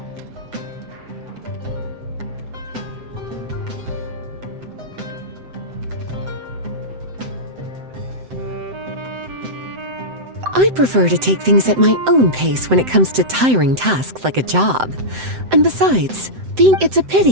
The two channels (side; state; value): left; late; 7.8 ms